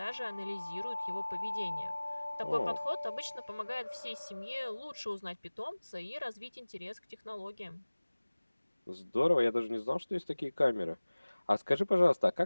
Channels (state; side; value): inverted; both; correlation -1.00